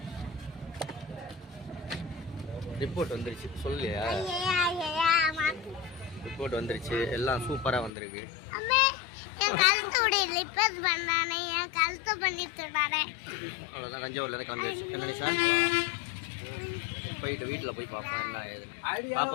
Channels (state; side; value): drops out; right; at 7.9 s